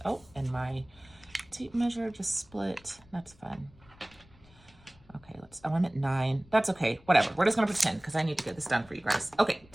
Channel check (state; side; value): noise; left; rumble, 26 dB below the sound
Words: Oh, and my tape measure just split. That's fun. Okay, I'm at 9. That's okay, whatever. We're just gonna pretend because I need to get this done for you guys. Okay,